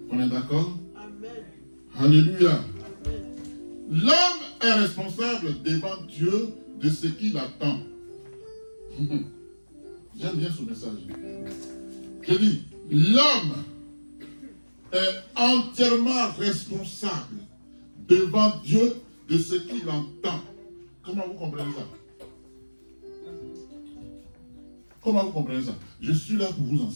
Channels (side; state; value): both; inverted; correlation -1.00